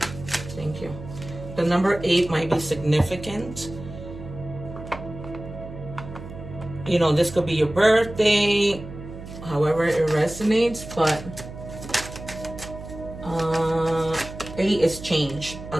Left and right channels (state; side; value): noise; right; hum, 12 dB below the sound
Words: Thank you. The number 8 might be significant. You know, this could be your birthday, however it resonates, but 8 is change,